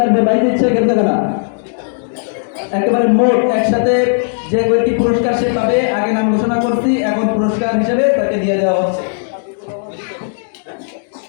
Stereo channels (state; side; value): silent; right; 69 dB below the other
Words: আসবে বাইজিদ শেখ হেফসানা। একেবারে মোট একসাথে যে ব্যক্তি পুরস্কার সে পাবে, আগে নাম ঘোষণা করছি, এখন পুরস্কার হিসেবে তাকে দিয়ে দেওয়া হচ্ছে।